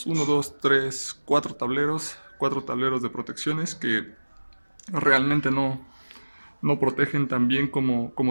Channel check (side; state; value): both; inverted; correlation -1.00